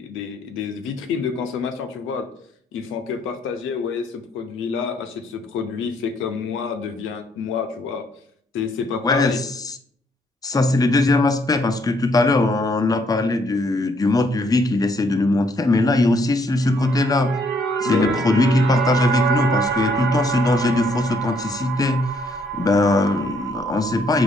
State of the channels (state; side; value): normal; both; correlation 0.68